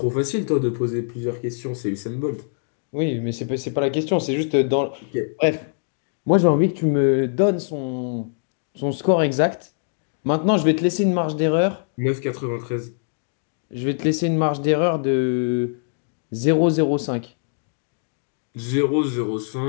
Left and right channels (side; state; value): right; silent; digital silence